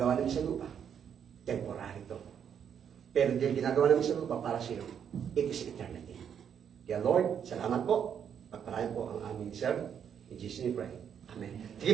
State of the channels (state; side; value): quieter; left; 8.2 dB